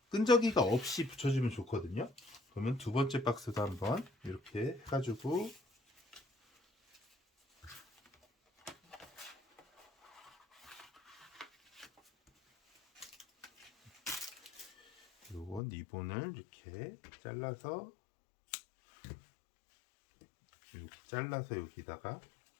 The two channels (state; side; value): drops out; right; at 15.6 s